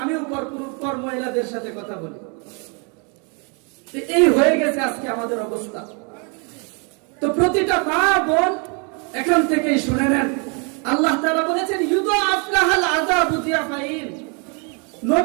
আমিও পর মহিলাদের সাথে কথা বলি। এই হয়ে গেছে আজকে আমাদের অবস্থা। তো প্রতিটা মা, বোন এখান থেকেই শুনে নেন, আল্লাহ তাআলা বলেছেন ইউদাআফ লাহাল আযাবু যিআফাইন,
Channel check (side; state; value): left; quieter; 35.2 dB